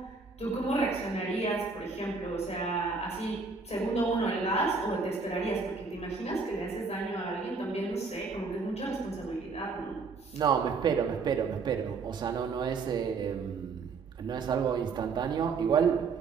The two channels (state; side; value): quieter; left; 4.6 dB